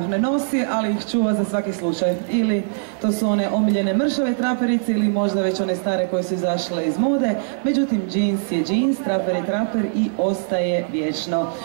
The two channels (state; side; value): silent; left; 57 dB below the other